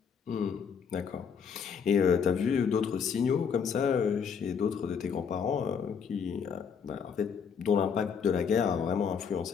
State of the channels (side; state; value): right; quieter; 6.7 dB